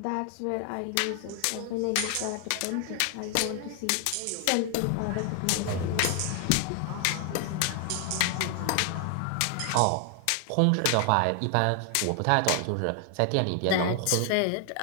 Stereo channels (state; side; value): different; both; correlation 0.00